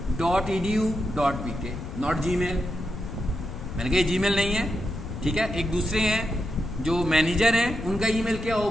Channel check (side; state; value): left; noise; rumble, 8 dB below the sound